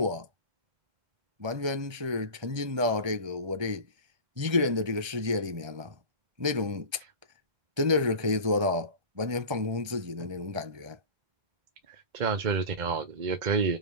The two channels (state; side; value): late; left; 1.3 ms